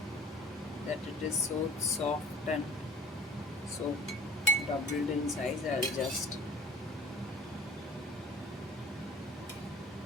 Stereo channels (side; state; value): both; normal; correlation 0.45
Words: that it is so soft and so doubled in size. I'll just,